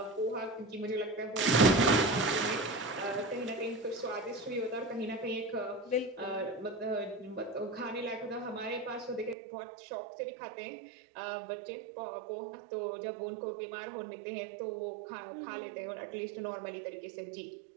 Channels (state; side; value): drops out; left; at 9.3 s